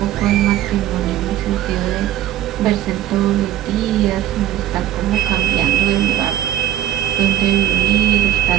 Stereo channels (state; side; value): quieter; left; 12.3 dB